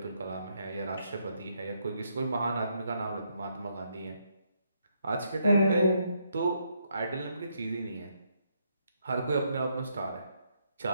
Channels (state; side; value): inverted; both; correlation -0.75